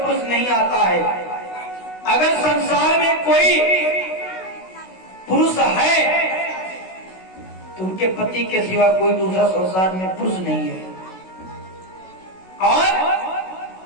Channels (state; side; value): late; right; 16 ms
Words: नहीं आता है। अगर संसार में कोई पुरुष है तो उनके पति के सिवा कोई दूसरा संसार में पुरुष नहीं है। और